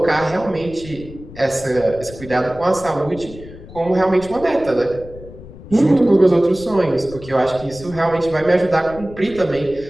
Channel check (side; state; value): left; noise; rumble, 16 dB below the sound